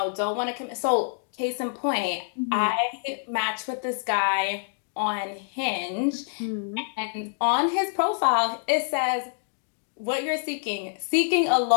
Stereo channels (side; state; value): right; silent; digital silence